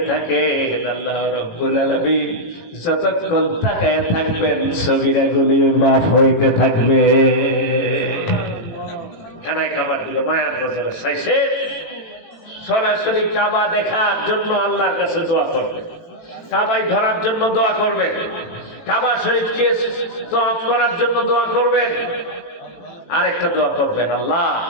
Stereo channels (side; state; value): right; late; 18 ms